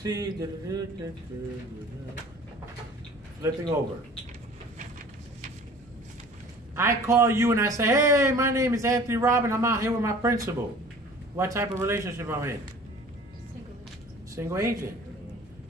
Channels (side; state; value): both; normal; correlation 0.47